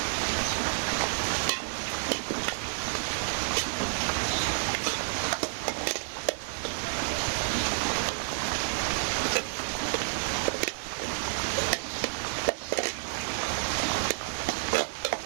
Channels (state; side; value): silent; left; digital silence